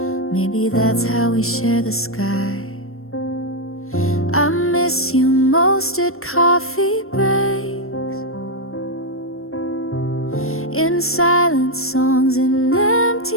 Maybe that's how we share the sky. I miss you most at coffee breaks, in silent songs and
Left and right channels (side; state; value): right; late; 0.62 ms